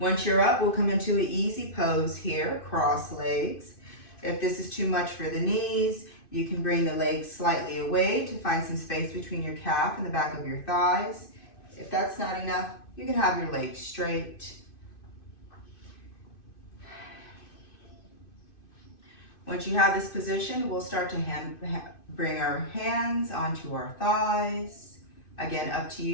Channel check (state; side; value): late; right; 2.5 ms